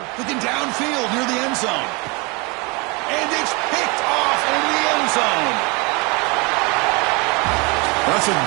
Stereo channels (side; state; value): left; quieter; 28.8 dB